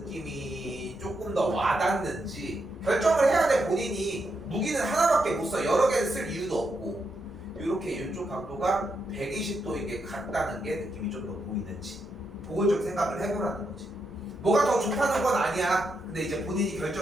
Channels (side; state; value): both; normal; correlation 0.82